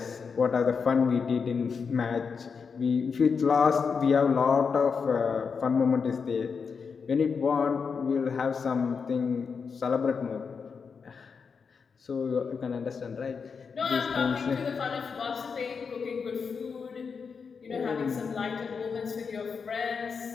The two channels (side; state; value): right; quieter; 5.7 dB